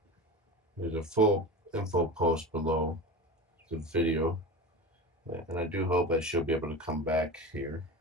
There's a full info post below the video, and I do hope that she'll be able to come back here.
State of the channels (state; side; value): normal; both; correlation 0.29